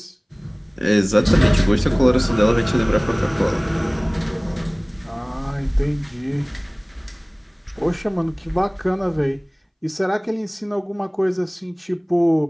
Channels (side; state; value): both; identical; correlation 1.00